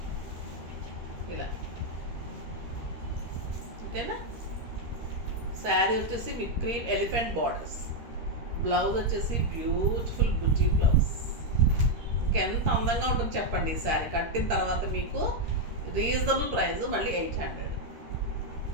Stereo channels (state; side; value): late; left; 13 ms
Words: ఇలా. ఓకేనా? శారీ వచ్చేసి with cream elephant borders, blouse వచ్చేసి బ్యూటిఫుల్ బుటీ బ్లౌజ్. ఇంకెంత అందంగా ఉంటుంది చెప్పండి. ఈ శారీ కట్టిన తర్వాత మీకు రీజనబుల్ ప్రైస్ మళ్ళీ 800.